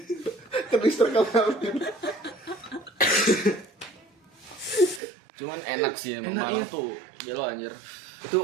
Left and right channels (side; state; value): left; drops out; at 5.0 s